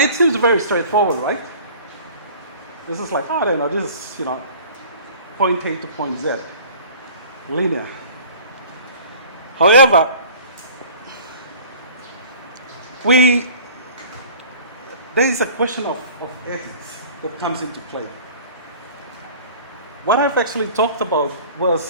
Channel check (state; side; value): inverted; both; correlation -0.45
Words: seems very straightforward, right? This is like, I don't know, this is, point A to point Z, linear. However, there is a question of ethics that comes into play. What I've actually talked about